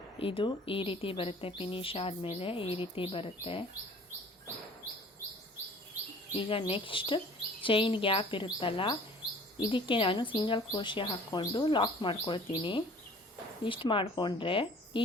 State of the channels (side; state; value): both; normal; correlation 0.49